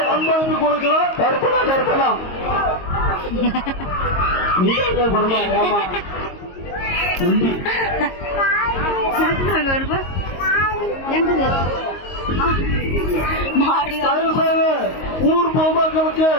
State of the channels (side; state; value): right; late; 22 ms